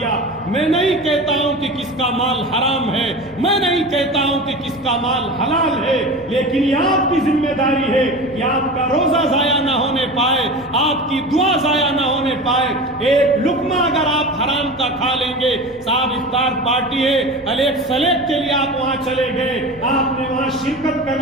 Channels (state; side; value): normal; both; correlation 0.31